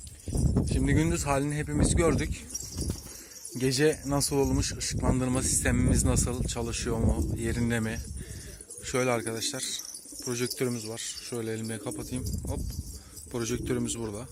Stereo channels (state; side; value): identical; both; correlation 1.00